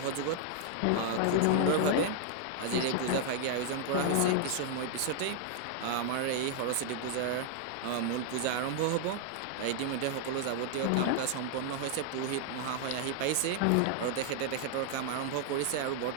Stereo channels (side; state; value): both; different; correlation 0.00